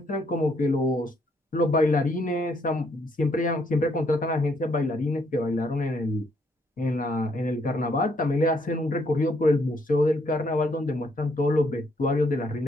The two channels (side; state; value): both; normal; correlation 0.71